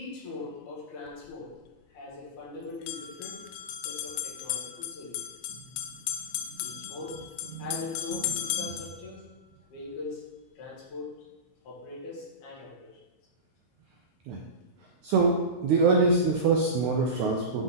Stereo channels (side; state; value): both; normal; correlation -0.19